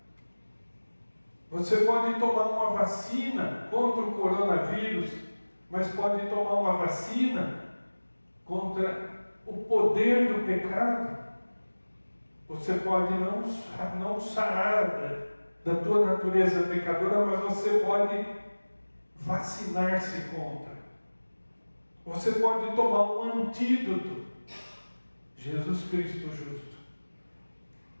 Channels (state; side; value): inverted; both; correlation -1.00